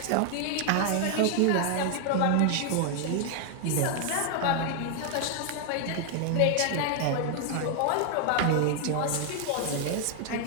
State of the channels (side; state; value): both; different; correlation 0.00